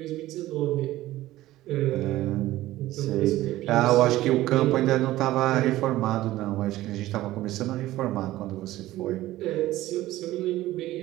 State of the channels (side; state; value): left; quieter; 16.0 dB